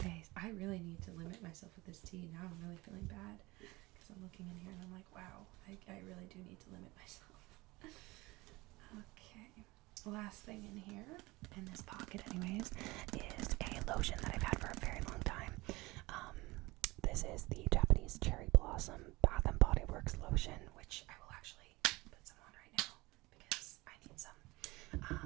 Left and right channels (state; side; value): quieter; left; 21.8 dB